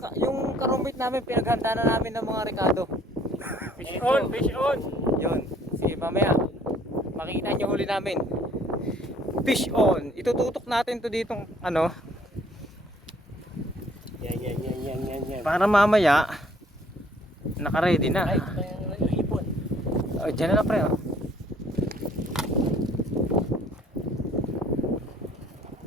Yung karumit namin, pinaghanda na namin ng mga Ricardo. Fish on, fish on. Yun. Sige, mamaya. Makikita nyo huli namin. Fish on. Itututok natin to ditong ano. Yan. Para mamaya, naka-ready na. Ay, ito yung ipon. Diyan na lang pre.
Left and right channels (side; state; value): both; normal; correlation 0.59